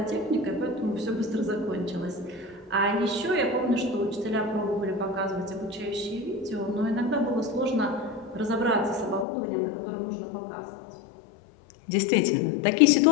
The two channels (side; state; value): right; drops out; at 9.2 s